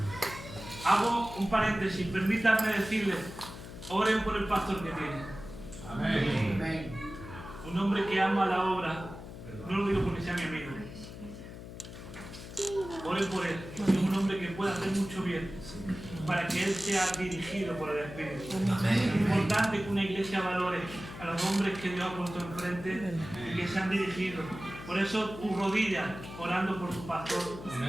Hago un paréntesis, permítanme decirles, oren por el pastor que tiene. Amén. Un hombre que ama la obra, no lo digo porque sea mi amigo. Oren por él, es un hombre que puede hacer mucho bien, para que él sea dirigido por el Espíritu. Es importante que una iglesia valore a los hombres que Dios ha puesto enfrente y que sean dirigidos. Por eso tu rodilla orando por tu pastor,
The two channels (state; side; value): noise; left; hum, 12 dB below the sound